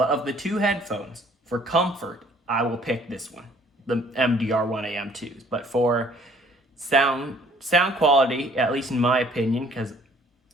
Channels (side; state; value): both; normal; correlation 0.58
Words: of the two headphones, for comfort, I will pick this one, the MDR 1AM2s. But for sound quality, at least in my opinion, because